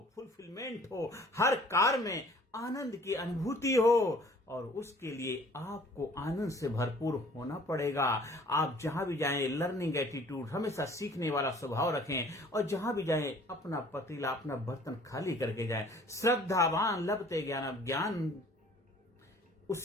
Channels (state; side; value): normal; both; correlation 0.53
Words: फुलफिलमेंट हो। हर कार में आनंद की अनुभूति हो, और उसके लिए आपको आनंद से भरपूर होना पड़ेगा। आप जहां भी जाएं, लर्निंग एटीट्यूड, हमेशा सीखने वाला स्वभाव रखें, और जहां भी जाएं अपना पतीला, अपना बर्तन खाली करके जाएं। श्रद्धावान लभते ज्ञान, ज्ञान